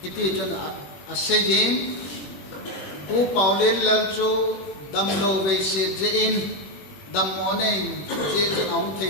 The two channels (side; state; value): right; late; 21 ms